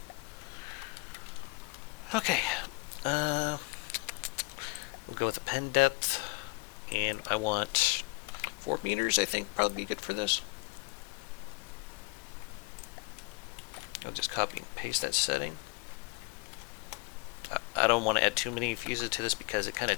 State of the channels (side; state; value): right; quieter; 28.7 dB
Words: Okay, we'll go with the pen depth, and I want 4 meters, I think, probably be good for this. I'll just copy and paste that setting. I don't want to add too many fuses to this because it kind of